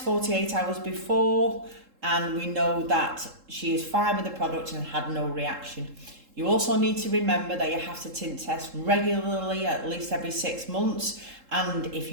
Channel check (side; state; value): left; late; 3.7 ms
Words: 48 hours before and we know that she is fine with the product and had no reaction. You also need to remember that you have to tint test regularly, at least every 6 months. And if